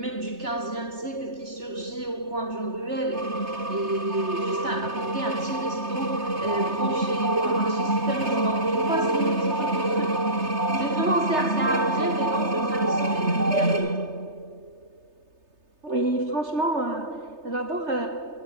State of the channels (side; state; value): left; late; 3.3 ms